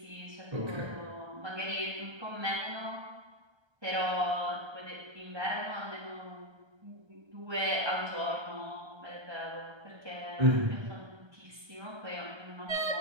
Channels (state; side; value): late; left; 1.3 ms